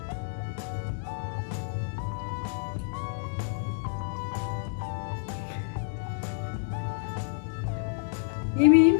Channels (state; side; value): silent; right; digital silence